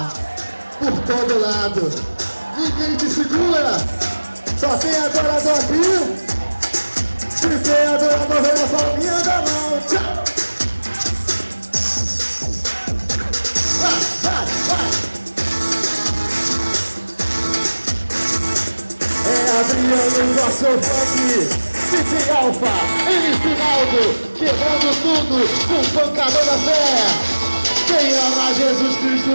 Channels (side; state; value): both; inverted; correlation -1.00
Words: por todo lado. Ninguém te segura. Só tem adorador aqui. Se tem adorador, vem na palminha da mão. Tchau. Vai. É Adriano, nosso funk. DJ Alfa, MC Naldo, quebrando tudo com pancada da fé. Quem ama Jesus Cristo